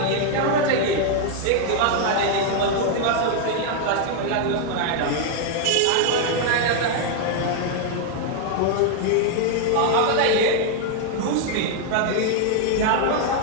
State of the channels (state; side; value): different; both; correlation 0.00